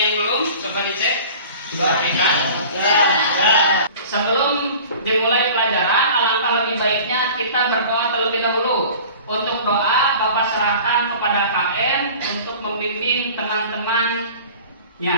belum? Coba dicek. Rapikan. Sebelum dimulai pelajaran, alangkah lebih baiknya kita berdoa terlebih dahulu. Untuk doa, Bapak serahkan kepada KM untuk membimbing teman-temannya.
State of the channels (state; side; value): inverted; both; correlation -0.43